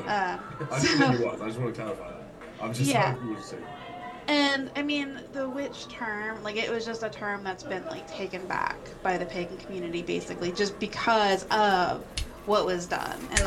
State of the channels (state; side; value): identical; both; correlation 1.00